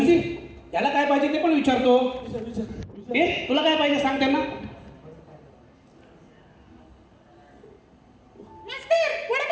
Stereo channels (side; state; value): both; identical; correlation 1.00